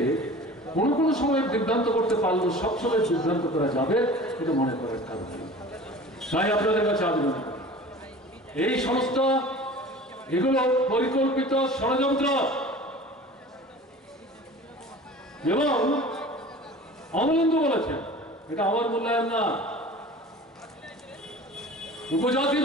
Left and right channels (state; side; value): normal; both; correlation 0.41